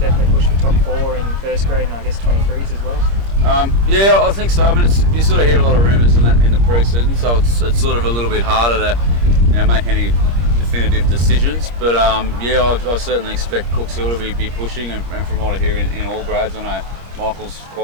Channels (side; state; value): left; late; 25 ms